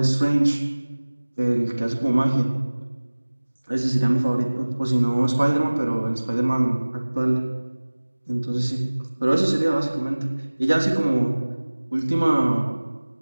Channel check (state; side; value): inverted; both; correlation -1.00